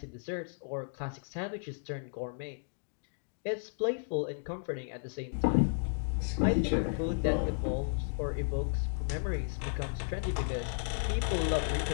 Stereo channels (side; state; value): right; silent; digital silence